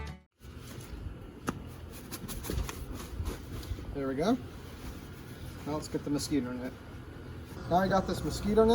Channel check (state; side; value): identical; both; correlation 1.00